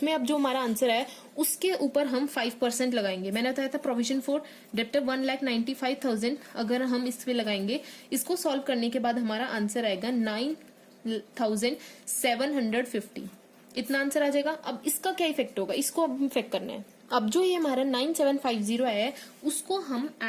अब जो हमारा आंसर आया उसके ऊपर हम 5% लगाएंगे। मैंने बताया था प्रोविजन फॉर डेप्टर 1,95,000 अगर हम इस पे लगाएंगे, इसको सॉल्व करने के बाद हमारा आंसर आएगा 9,750। इतना आंसर आ जाएगा। अब इसका क्या इफेक्ट होगा, इसको अब इफेक्ट करना है। अब जो ये हमारा 9,750 आया है उसको हम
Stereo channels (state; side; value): identical; both; correlation 1.00